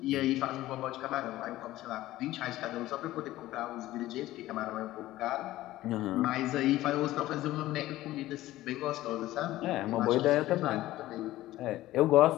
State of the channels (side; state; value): right; quieter; 15.9 dB